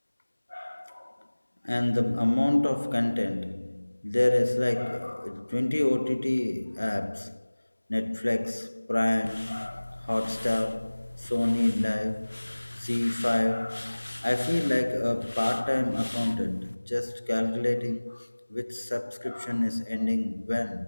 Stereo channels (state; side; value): inverted; both; correlation -1.00